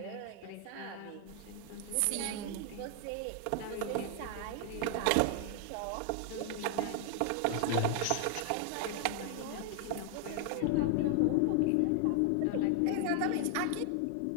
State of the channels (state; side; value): different; both; correlation 0.00